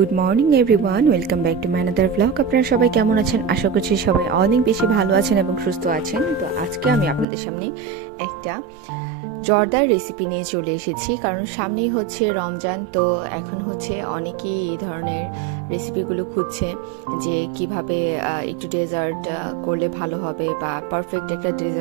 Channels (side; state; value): left; drops out; at 7.2 s